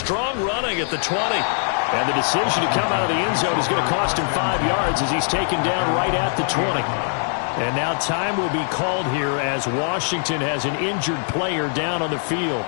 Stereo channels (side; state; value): right; silent; 64 dB below the other